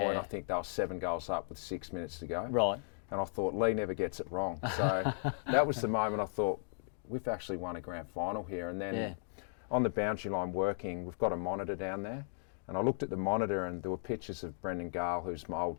I think they were 7 goals up with 6 minutes to go. Right. And I thought, Lee never gets it wrong. So that was the moment I thought, we've actually won a grand final here. And then on the boundary line working, we've got a monitor down there. And I looked at the monitor and there were pictures of Brendan Gale, who's my old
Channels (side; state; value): right; silent; 54 dB below the other